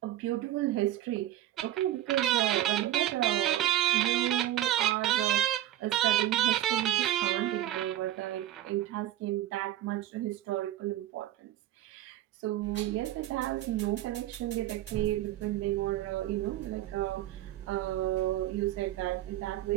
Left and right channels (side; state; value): left; quieter; 13.4 dB